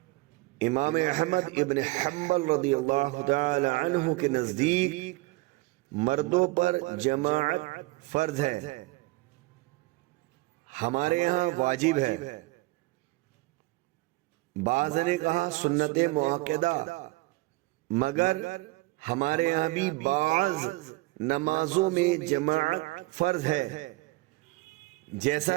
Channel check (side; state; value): left; quieter; 21.6 dB